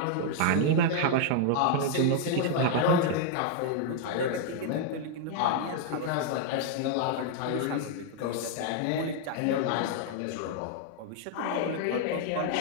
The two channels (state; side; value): different; both; correlation 0.00